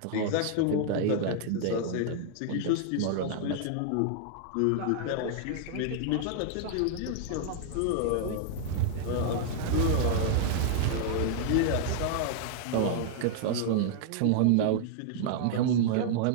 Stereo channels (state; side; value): different; both; correlation -0.01